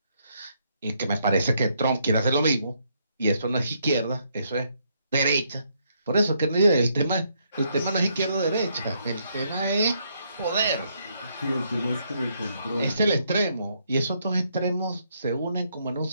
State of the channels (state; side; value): inverted; both; correlation -0.74